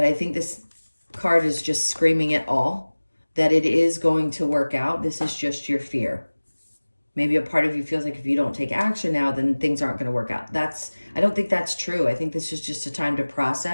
I think this card is just screaming it all, that it is going to work out. This is just your fear. Maybe a part of you feels like if you don't take action now, then things aren't going to work out. I don't think that's true. I think this is just a time to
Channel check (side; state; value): both; inverted; correlation -1.00